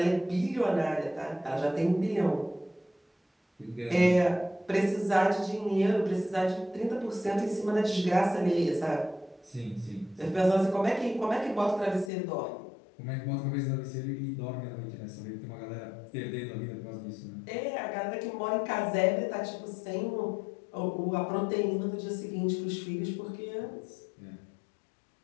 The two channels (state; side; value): drops out; right; at 12.1 s